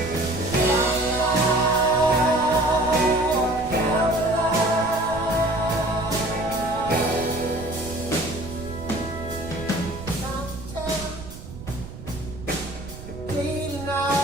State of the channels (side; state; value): right; noise; rumble, 13 dB below the sound